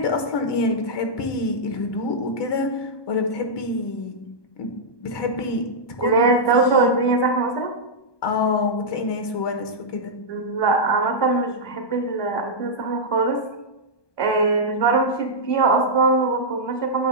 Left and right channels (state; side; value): late; right; 1.2 ms